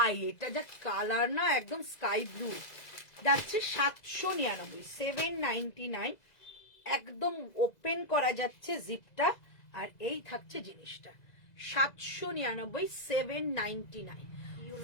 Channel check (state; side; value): late; right; 2.0 ms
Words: এটা যা কালার না, একদম স্কাই ব্লু, যাচ্ছে 799, 799, একদম ওপেন করা যাচ্ছে জিপটা, আর এই থাকছে জিনিসটা। 799, 799,